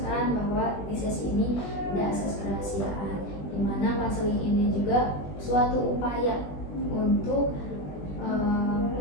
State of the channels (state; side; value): late; right; 20 ms